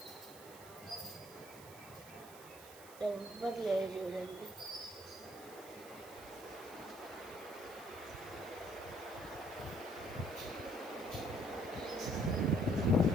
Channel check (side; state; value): right; noise; hiss, 17 dB below the sound